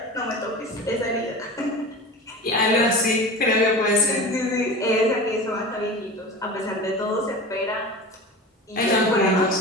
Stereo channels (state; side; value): normal; both; correlation 0.33